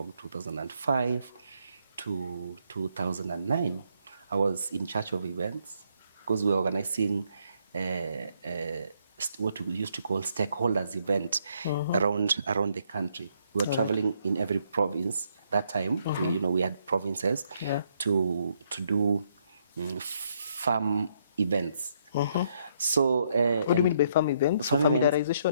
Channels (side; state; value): both; inverted; correlation -0.73